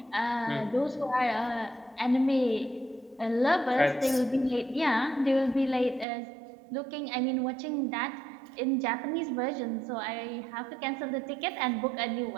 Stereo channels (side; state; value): left; drops out; at 6.1 s